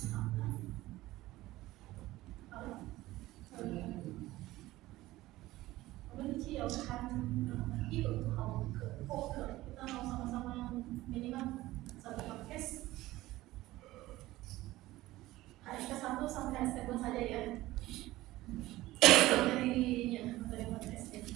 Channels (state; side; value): quieter; left; 17.2 dB